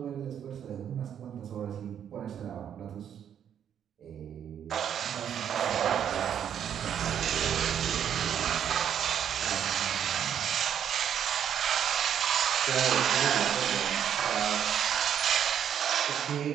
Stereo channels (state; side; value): quieter; left; 9.1 dB